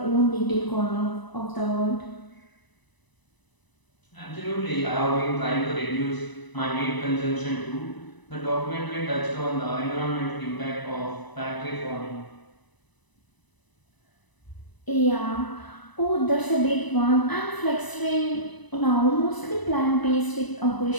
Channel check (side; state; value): right; late; 1.0 ms